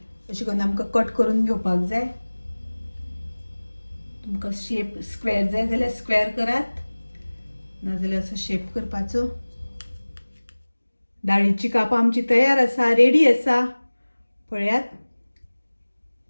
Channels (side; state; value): both; inverted; correlation -1.00